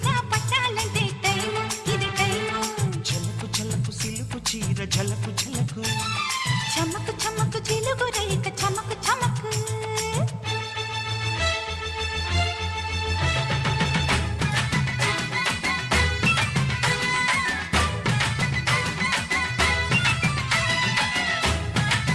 పట్టాలంటే టైము ఇది టైము జలకు జలకు సిలుకు చీర జలకు జలకు చమ్మకు చమ్మకు చిలుగు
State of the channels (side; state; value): both; identical; correlation 1.00